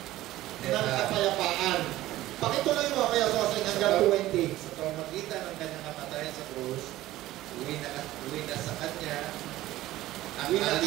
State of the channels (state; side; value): quieter; left; 15.8 dB